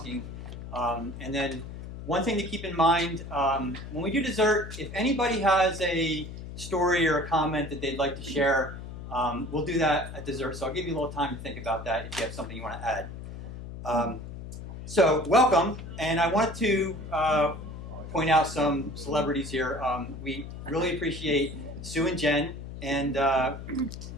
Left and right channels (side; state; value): left; noise; hum, 10 dB below the sound